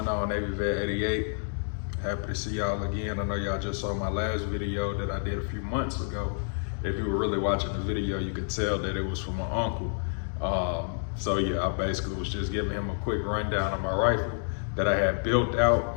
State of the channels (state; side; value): silent; right; digital silence